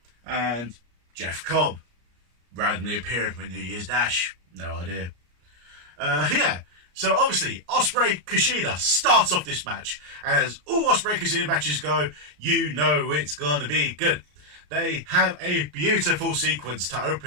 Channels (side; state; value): left; late; 34 ms